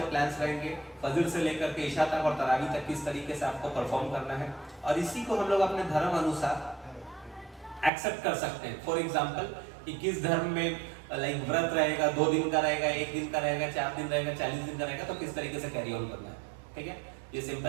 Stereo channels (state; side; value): drops out; left; at 7.9 s